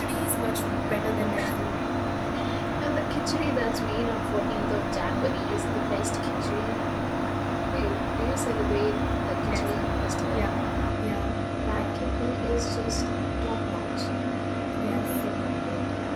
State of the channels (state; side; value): identical; both; correlation 1.00